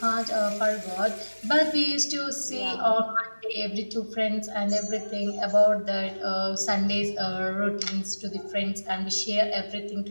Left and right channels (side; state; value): both; inverted; correlation -1.00